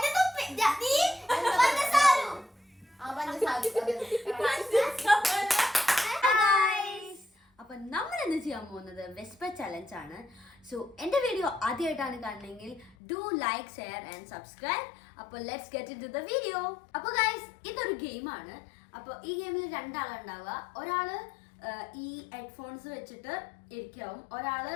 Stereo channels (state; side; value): drops out; right; at 13.0 s